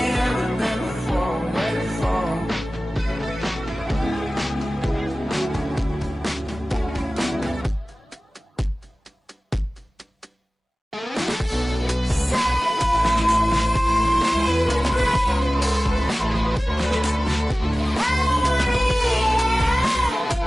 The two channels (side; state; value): both; normal; correlation 0.97